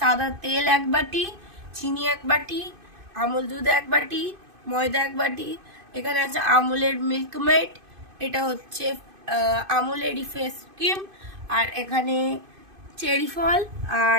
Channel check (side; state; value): left; late; 2.5 ms